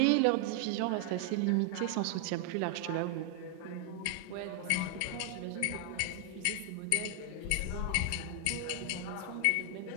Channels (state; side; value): different; both; correlation 0.00